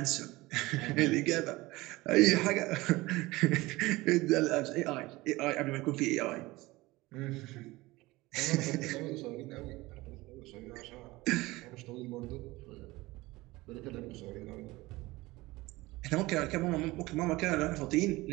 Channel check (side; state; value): left; quieter; 20.3 dB